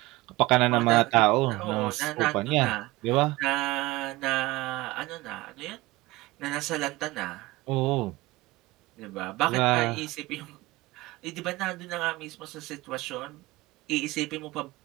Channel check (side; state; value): left; quieter; 20.1 dB